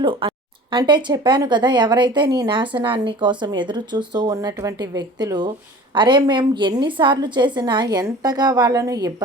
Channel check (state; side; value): normal; both; correlation 0.42